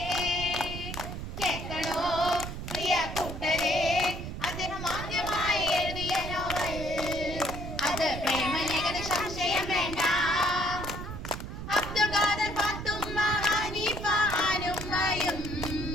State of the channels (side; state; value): right; noise; rumble, 7 dB below the sound